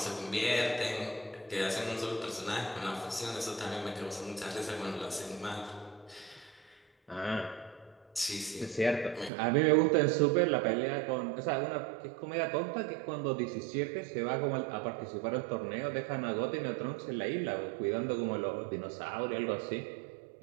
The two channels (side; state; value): left; drops out; at 9.3 s